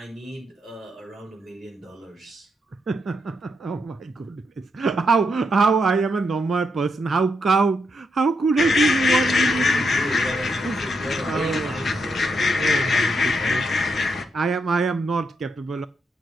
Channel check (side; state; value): both; normal; correlation 0.81